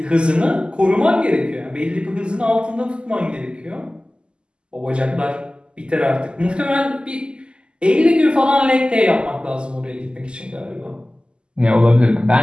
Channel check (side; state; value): left; late; 0.050 ms